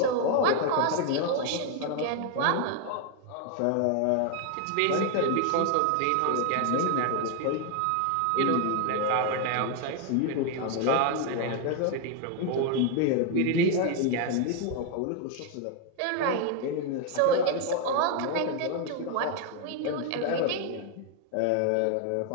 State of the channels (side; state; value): both; different; correlation 0.01